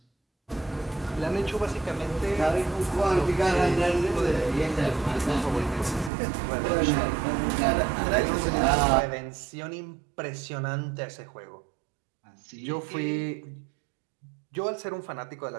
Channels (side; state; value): left; drops out; at 6.1 s